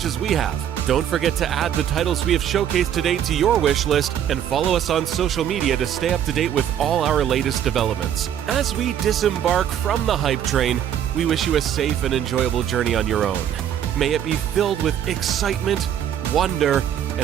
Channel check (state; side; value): quieter; left; 9.9 dB